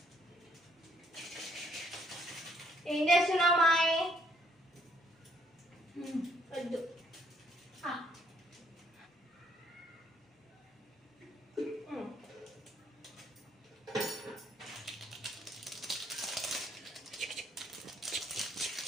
ఏం చేస్తున్నావు మాయ్? వద్దు.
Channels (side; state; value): both; normal; correlation 0.68